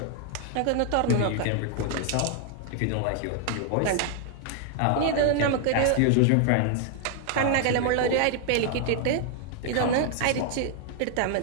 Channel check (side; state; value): both; different; correlation 0.00